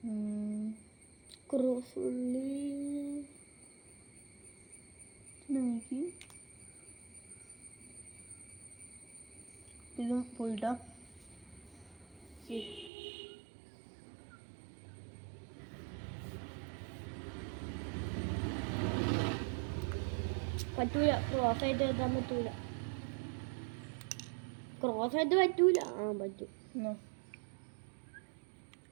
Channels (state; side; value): drops out; left; at 12.9 s